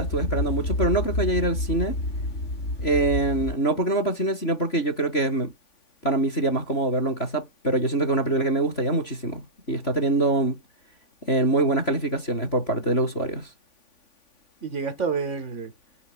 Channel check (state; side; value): late; right; 3.5 ms